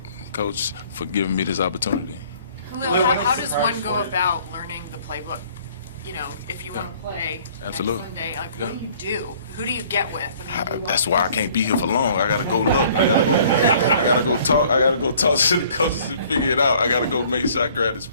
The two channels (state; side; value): inverted; both; correlation -0.56